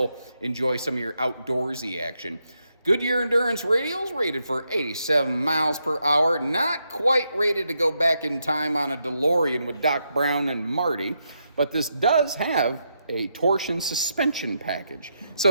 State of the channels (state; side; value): inverted; both; correlation -0.82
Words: enjoy some of your outdoorsy action. Goodyear Endurance radials rated for 87 miles per hour. Not quite rated to go back in time on a DeLorean with Doc Brown and Marty, but this does have a torsion suspension package.